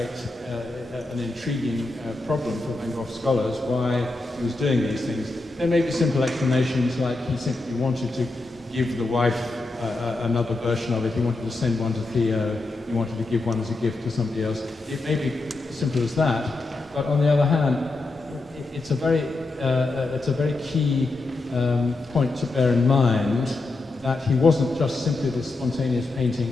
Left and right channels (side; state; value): right; quieter; 3.1 dB